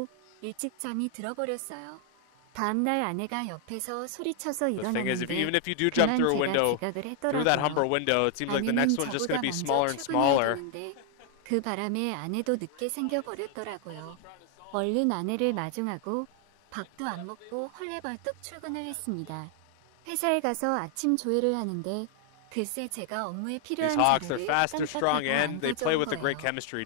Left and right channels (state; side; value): different; both; correlation 0.00